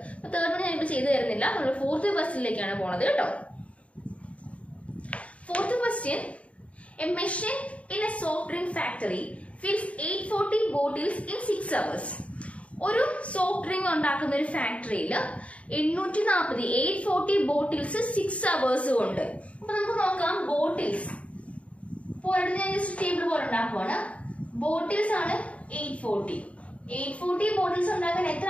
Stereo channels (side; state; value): right; late; 0.065 ms